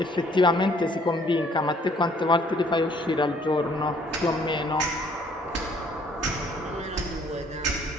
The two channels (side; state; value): both; normal; correlation 0.61